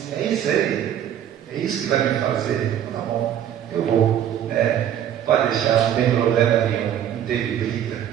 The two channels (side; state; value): left; quieter; 10.3 dB